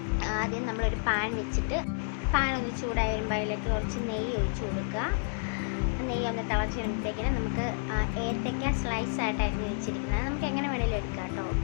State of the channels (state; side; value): silent; right; digital silence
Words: ആദ്യം നമ്മളൊരു പാൻ വെച്ചിട്ട് പാൻ ഒന്ന് ചൂടായി വരുമ്പോൾ അതിലേക്ക് കുറച്ച് നെയ്യ് ഒഴിച്ച് കൊടുക്കുക. നെയ്യ് ഒന്ന് തിളച്ച് വരുമ്പോഴത്തേക്കിന് നമുക്ക് ഏത്തയ്ക്ക സ്ലൈസ് ആയിട്ട് അരിഞ്ഞ് വെച്ചിരിക്കുന്നത് നമുക്ക് എങ്ങനെ വേണമെങ്കിലും എടുക്കാം കേട്ടോ,